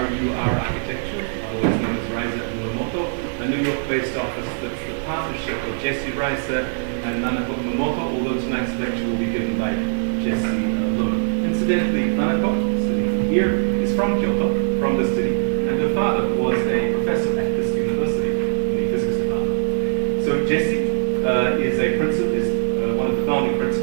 Architecture, otherwise known as Reiser and Nanako, a New York-based office that's the partnership of Jesse Reiser and Nanako Umemoto, although tonight's lecture will be given by Jesse alone. Incidentally, Nanako, sitting here, is from Kyoto, from the city, and her father was a professor at this university in the physics department. So Jesse is one of the founding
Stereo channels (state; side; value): silent; left; digital silence